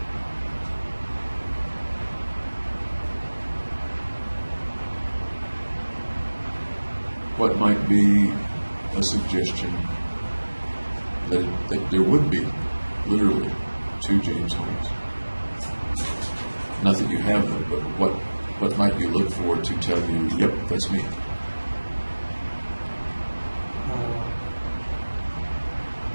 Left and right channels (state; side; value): inverted; both; correlation -1.00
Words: What might be a suggestion that there would be literally two James Holmes? Not that you have them, but what might you look for to tell you, yep, that's me?